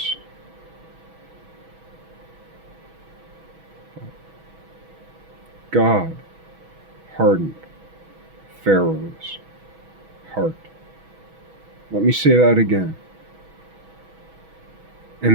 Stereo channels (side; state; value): left; late; 6.2 ms